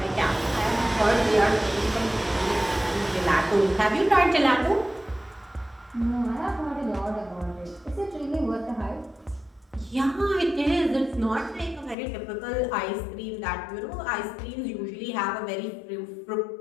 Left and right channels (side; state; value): right; drops out; at 12.0 s